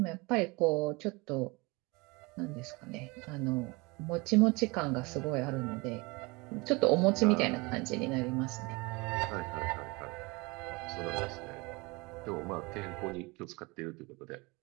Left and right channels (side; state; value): left; quieter; 25.8 dB